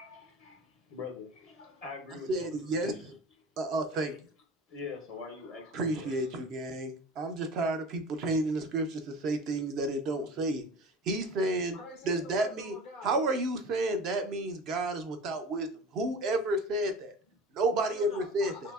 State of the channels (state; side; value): normal; both; correlation 0.38